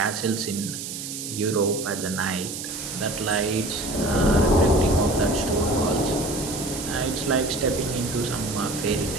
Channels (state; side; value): noise; right; hiss, 7 dB below the sound